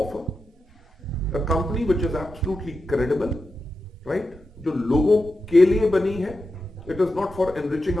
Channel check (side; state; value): both; normal; correlation 0.90